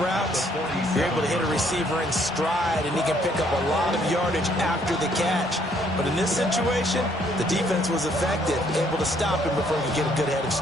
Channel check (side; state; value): both; normal; correlation 0.66